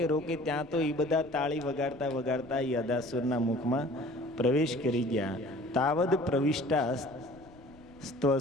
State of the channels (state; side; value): noise; left; rumble, 24 dB below the sound